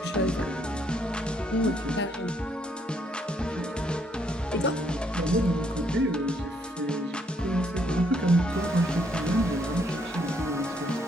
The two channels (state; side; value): normal; both; correlation 0.71